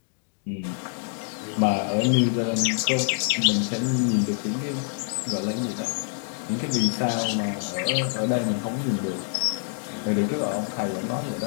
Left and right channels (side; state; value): right; silent; 61 dB below the other